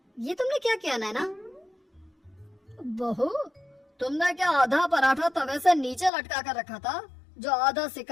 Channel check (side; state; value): right; drops out; at 6.1 s